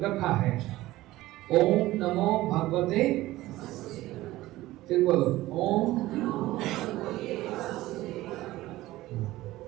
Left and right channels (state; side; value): quieter; left; 17.1 dB